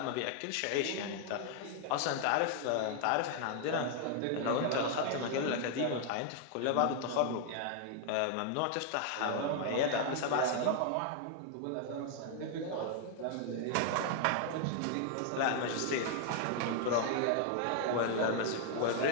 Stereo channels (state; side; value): different; both; correlation 0.00